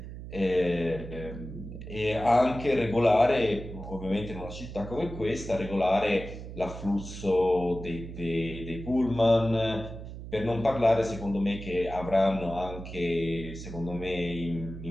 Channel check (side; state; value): right; noise; hum, 11 dB below the sound